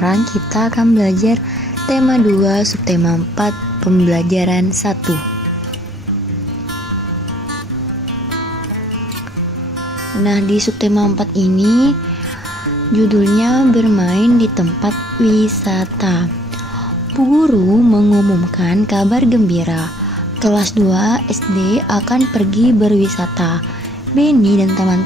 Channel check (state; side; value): normal; both; correlation 0.62